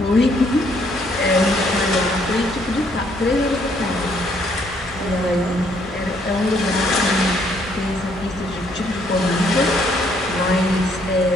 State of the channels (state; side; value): normal; both; correlation 0.68